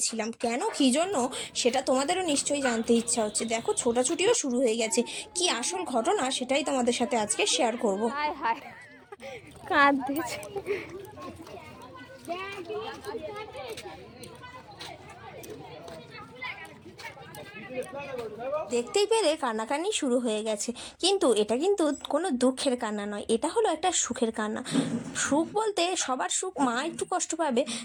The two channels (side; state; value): both; identical; correlation 1.00